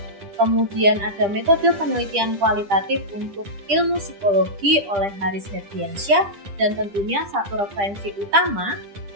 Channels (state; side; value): late; left; 10 ms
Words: kemudian ada metode penelitian kualitatif untuk ilmu psikologi oleh Haris Herdiansyah, dan tentunya satu referensi utama